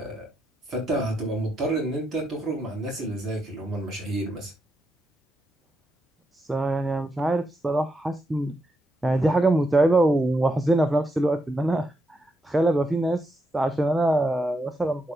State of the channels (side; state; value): both; normal; correlation 0.83